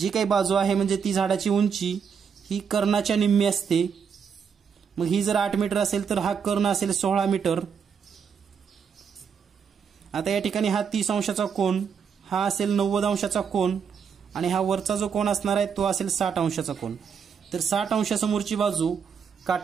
काही बाजू आहे म्हणजे ती झाडाची उंची ही कर्णाच्या निम्मी असते। मग ही जर 8 मीटर असेल तर हा कर्ण असेल 16 मीटर। आता या ठिकाणी हा 30 अंशाचा कोन हा असेल 90 अंशाचा कोन आणि हा वरचा जो कोन असणार आहे तो असेल 60 अंशाचा कोन। तर 60 अंशासमोरची बाजू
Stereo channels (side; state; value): left; quieter; 6.8 dB